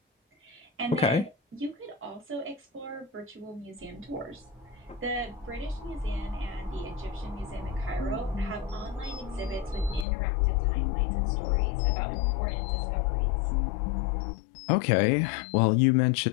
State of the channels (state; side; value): drops out; right; at 10.1 s